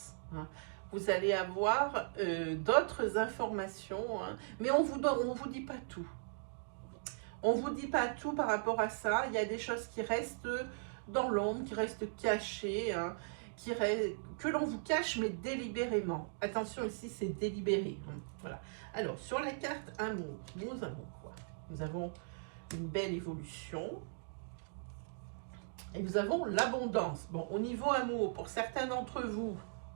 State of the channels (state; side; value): silent; left; digital silence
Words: Hein. Vous allez avoir d'autres informations, hein, mais on vous dit pas tout. On vous dit pas tout par rapport à ça. Il y a des choses qui restent dans l'ombre, qui restent cachées, hein, que l'on vous cache, mais délibérément. Attention, ici, c'est délibéré. Hein, voilà. Alors, sur la carte amour, nous avons quoi? Nous avons une belle évolution. Et nous avons l'abondance. Bon, au niveau amour, pour certains d'entre vous,